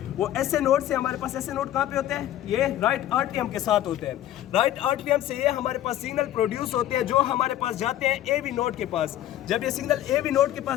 वो एसए नोड से हमारे पास एसए नोड कहाँ पे होते हैं? ये राइट आर्टियम के साथ होते हैं। राइट आर्टियम से ये हमारे पास सिग्नल प्रोड्यूस होते हैं जो हमारे पास जाते हैं एवी नोड के पास। जब ये सिग्नल एवी नोड के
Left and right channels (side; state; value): right; quieter; 12.7 dB